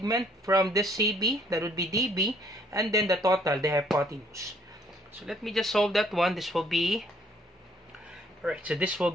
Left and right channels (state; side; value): normal; both; correlation 0.63